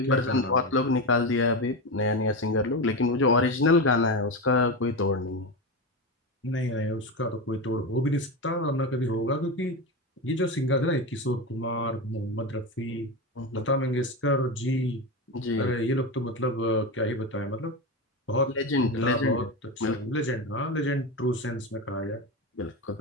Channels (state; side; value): normal; both; correlation 0.18